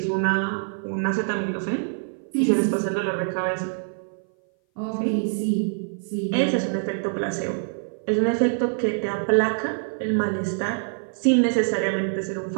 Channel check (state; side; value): silent; left; 57 dB below the other